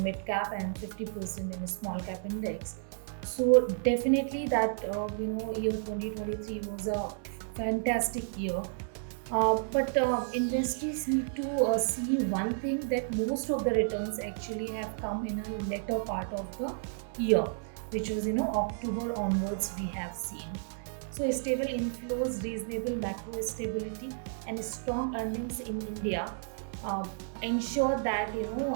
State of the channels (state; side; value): silent; left; 57 dB below the other